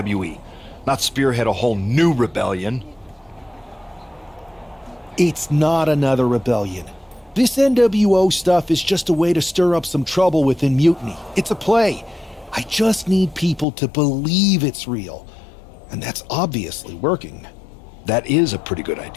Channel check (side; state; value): right; drops out; at 13.7 s